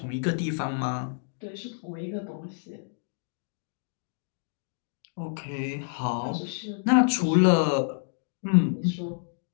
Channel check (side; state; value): right; silent; digital silence